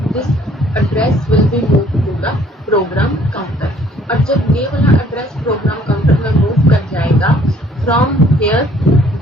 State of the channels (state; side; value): normal; both; correlation 0.59